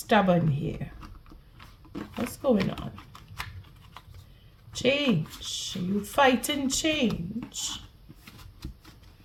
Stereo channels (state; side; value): identical; both; correlation 1.00